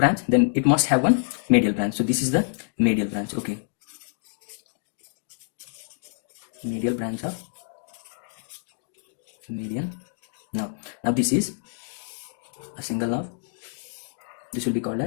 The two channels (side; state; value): right; silent; digital silence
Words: then it must have one medial branch. So this is the medial branch. Okay, medial branch of median nerve. Now this is a single nerve. This will be called